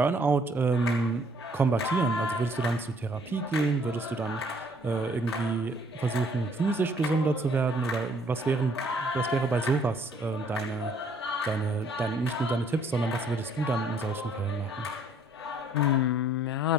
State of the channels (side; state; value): both; normal; correlation 0.62